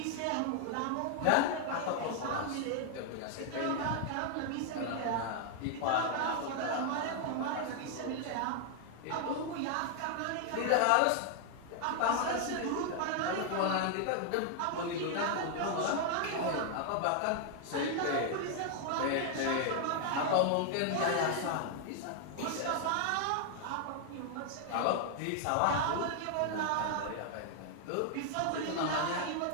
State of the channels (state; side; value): different; both; correlation 0.00